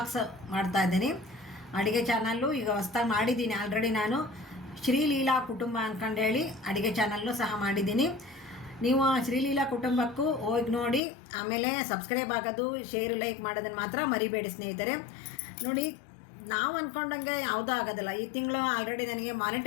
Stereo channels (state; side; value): drops out; right; at 11.0 s